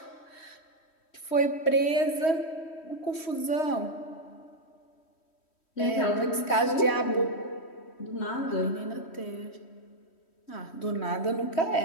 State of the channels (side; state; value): right; late; 3.1 ms